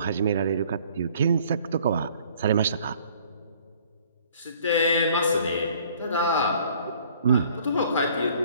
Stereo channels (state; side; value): inverted; both; correlation -0.56